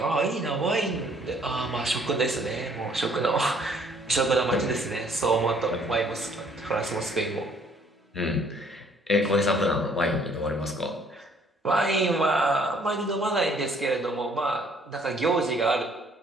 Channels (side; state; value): both; normal; correlation 0.61